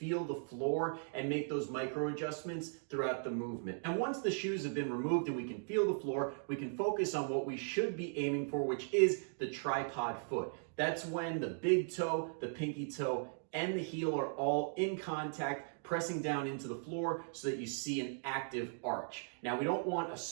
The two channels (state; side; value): silent; left; digital silence